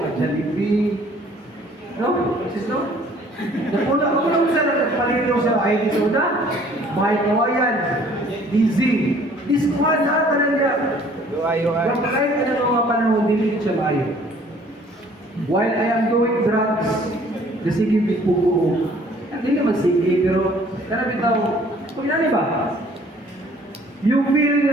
Jollibee. No? Sis, no? Napuna ako lang sa nagpalino sa IT sa una. Mga kawayan. Dizzy. Diskuhan na ka na niya. UI. Yung kahit ka na mga panahon, dili siya maayo. While I am doing drugs, sige, bipugo. Hindi naman sige, pero karami tao, kung inani ba? You feel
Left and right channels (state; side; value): normal; both; correlation 0.56